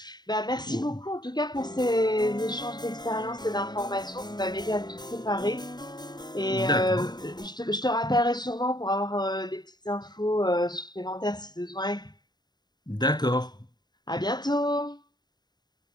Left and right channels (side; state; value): right; late; 0.20 ms